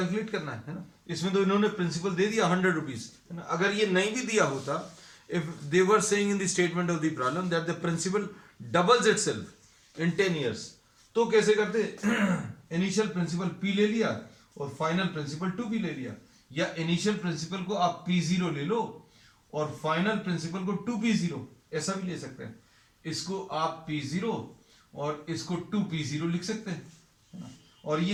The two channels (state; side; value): identical; both; correlation 1.00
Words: करना है ना. इसमें तो इन्होंने प्रिंसिपल दे दिया 100 रुपीज, है ना. अगर ये नहीं भी दिया होता, if they were saying in the statement of the problem that the principal doubles itself in 10 years, तो कैसे करते? इनिशियल प्रिंसिपल P ले लिया और फाइनल प्रिंसिपल 2P ले लिया. या इनिशियल प्रिंसिपल को आप P0 ले लो और फाइनल प्रिंसिपल को 2P0, ऐसा भी ले सकते हैं. इसको आप P0 और इसको 2P0 लिख सकते हैं. और